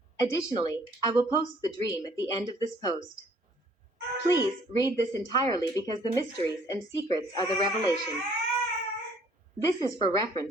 Additionally, I will post the dream at the end of this post. Please read this entirely because the mysteries and secrets are the revelation. This is for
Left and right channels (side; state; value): both; normal; correlation 0.59